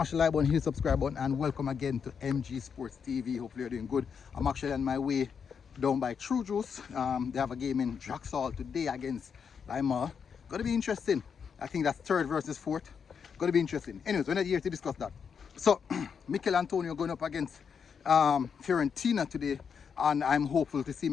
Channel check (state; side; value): quieter; right; 6.6 dB